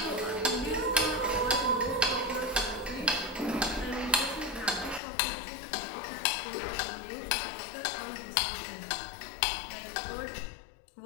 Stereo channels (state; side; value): drops out; right; at 5.0 s